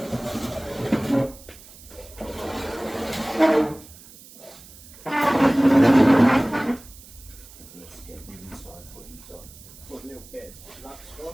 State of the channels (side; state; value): right; noise; hiss, 20 dB below the sound